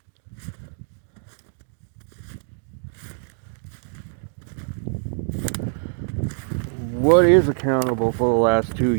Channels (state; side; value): silent; left; 62 dB below the other